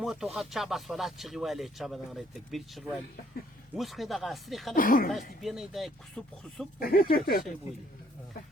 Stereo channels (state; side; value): normal; both; correlation 0.65